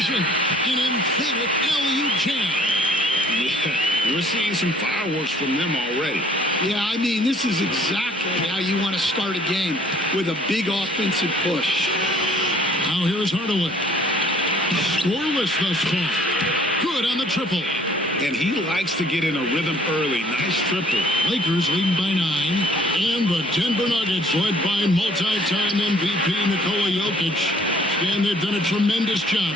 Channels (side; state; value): both; normal; correlation 0.57